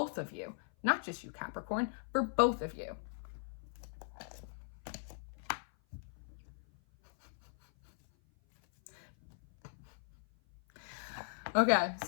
of you, not just you, Capricorn, for both of you. Okay,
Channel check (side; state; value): right; silent; 52 dB below the other